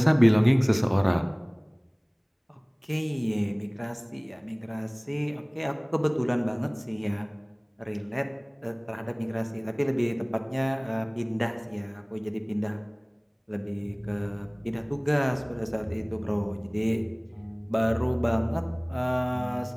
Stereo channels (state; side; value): identical; both; correlation 1.00